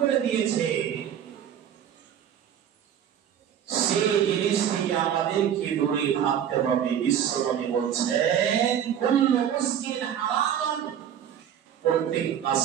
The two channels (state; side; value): quieter; left; 9.4 dB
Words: দিয়েছে, সেই জিনিস থেকে আমাদেরকে দূরে থাকতে হবে। বিশ্বনবী বলছেন কুল্লু মুসকিন হারাম, প্রত্যেক